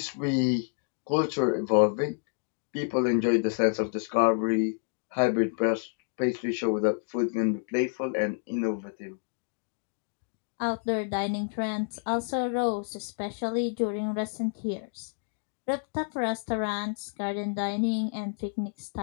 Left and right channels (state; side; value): silent; right; digital silence